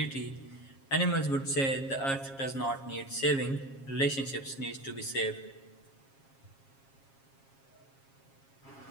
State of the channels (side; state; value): right; late; 7.4 ms